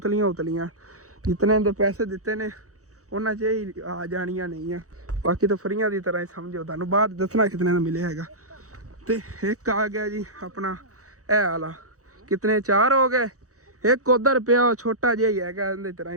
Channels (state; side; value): late; left; 0.65 ms